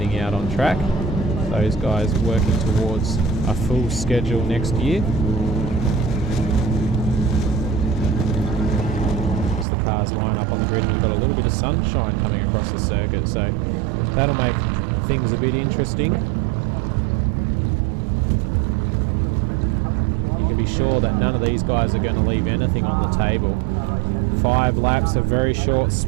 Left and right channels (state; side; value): drops out; left; at 9.7 s